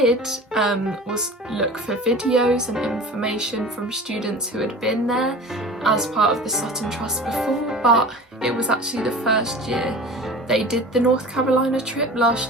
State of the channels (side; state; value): both; normal; correlation 0.38